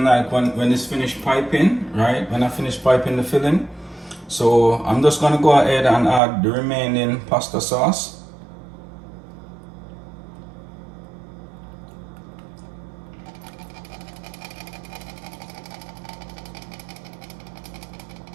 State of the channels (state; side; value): drops out; left; at 6.2 s